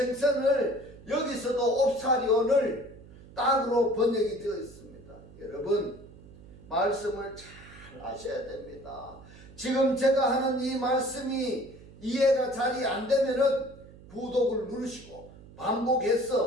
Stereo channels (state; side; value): noise; right; hum, 20 dB below the sound